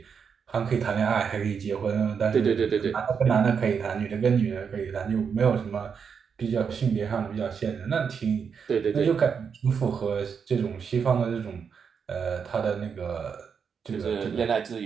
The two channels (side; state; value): left; quieter; 6.5 dB